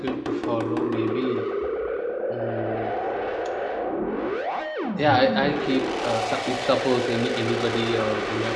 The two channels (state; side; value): identical; both; correlation 1.00